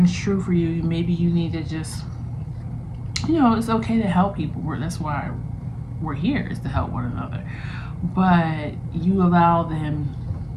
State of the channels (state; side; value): identical; both; correlation 1.00